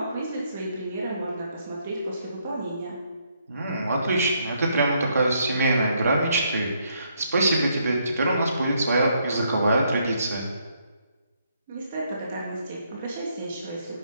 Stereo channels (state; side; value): inverted; both; correlation -0.73